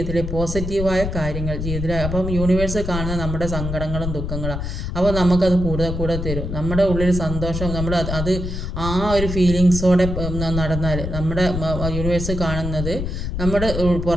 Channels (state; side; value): noise; left; rumble, 4 dB below the sound